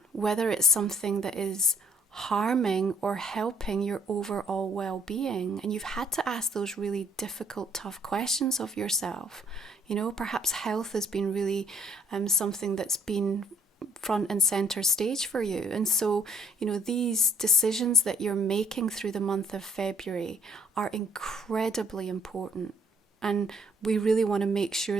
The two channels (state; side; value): normal; both; correlation 0.62